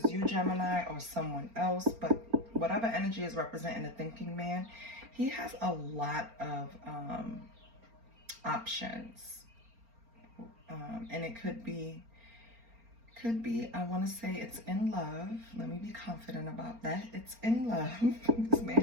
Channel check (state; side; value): late; left; 4.3 ms